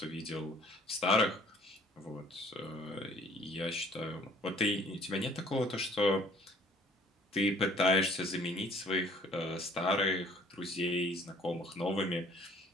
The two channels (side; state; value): both; normal; correlation 0.55